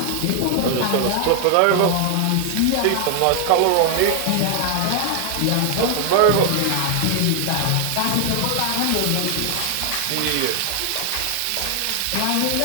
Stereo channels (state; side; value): different; both; correlation 0.00